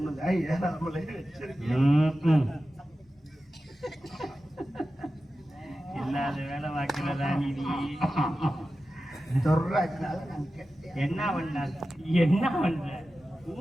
இல்லாத வேலை வாக்கிறதா நீ? என்ன பண்ண என்ன பண்ற?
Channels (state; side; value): normal; both; correlation 0.93